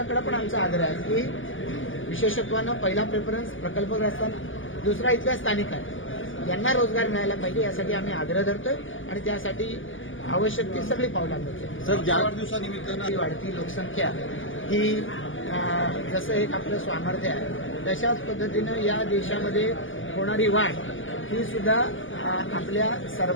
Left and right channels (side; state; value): right; late; 0.58 ms